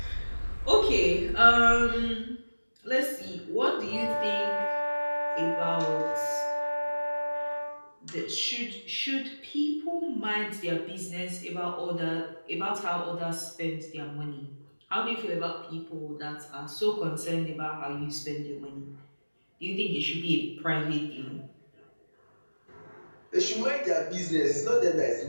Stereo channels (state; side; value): inverted; both; correlation -1.00